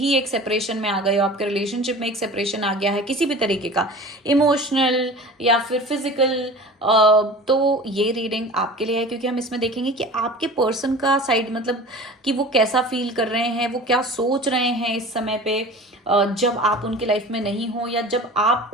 एक सेपरेशन में आ गए हो, आपके रिलेशनशिप में एक सेपरेशन आ गया है किसी भी तरीके का, इमोशनल या फिर फिजिकल, तो ये रीडिंग आपके लिए है। क्योंकि हम इसमें देखेंगे कि आपके पर्सन का साइड, मतलब कि वो कैसा फील कर रहे हैं, वो क्या सोच रहे हैं इस समय पे, जब आप उनकी लाइफ में नहीं हो, या जब आप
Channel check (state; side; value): normal; both; correlation 0.39